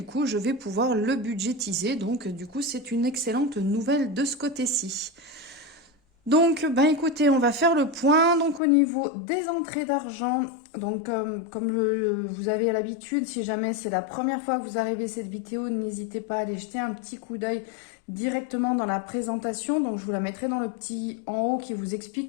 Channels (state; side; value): drops out; right; at 8.6 s